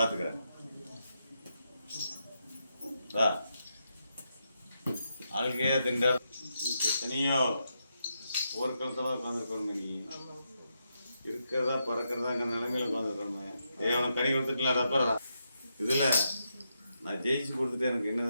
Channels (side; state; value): both; inverted; correlation -0.83